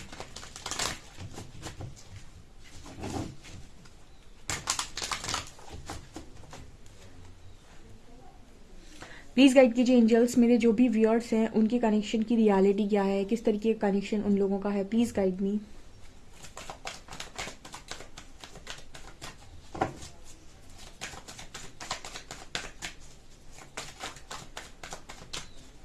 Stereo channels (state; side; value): identical; both; correlation 1.00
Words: प्लीज़ गाइड कीजिए एंजल्स, मेरे जो भी व्यूअर्स हैं उनके कनेक्शन की रियलिटी क्या है, किस तरीके का कनेक्शन उन लोगों का है। Please guide me.